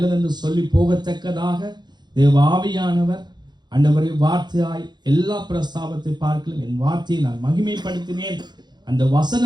சொல்லி போகத்தக்கதாக தேவ ஆவியானவர் ஆண்டவரே வார்த்தையாய் எல்லா பிரஸ்தாபத்தை பார்க்கலும் என் வார்த்தையை நான் மகிமைப்படுத்தினேன் அந்த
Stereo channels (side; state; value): left; late; 0.21 ms